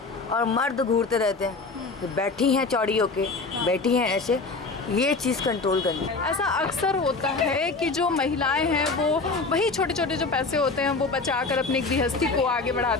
और मर्द घूरते रहते हैं तो बैठी हैं चौड़ी होके, बैठी हैं ऐसे। ये चीज़ कंट्रोल करनी है। ऐसा अक्सर होता है कि जो महिलाएं हैं वो वही छोटे छोटे जो पैसे होते हैं वो बचाकर अपनी गृहस्थी को आगे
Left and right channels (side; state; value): right; quieter; 3.9 dB